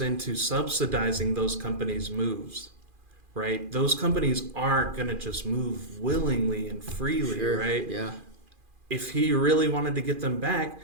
into subsidizing those companies' moves, right? Those companies aren't going to just move willingly and freely, right? Yeah. If he really wanted to get them back,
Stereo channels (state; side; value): late; left; 2.4 ms